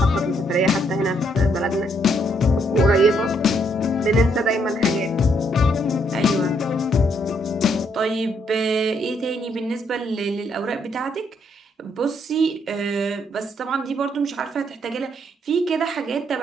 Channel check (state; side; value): normal; both; correlation 0.72